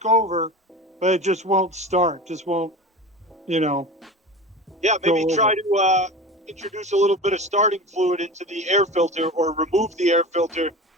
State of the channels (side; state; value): both; normal; correlation 0.31